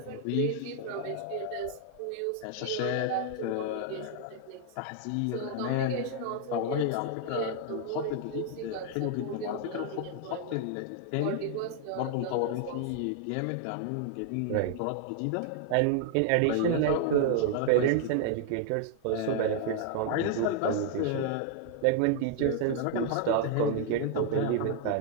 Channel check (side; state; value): both; different; correlation 0.00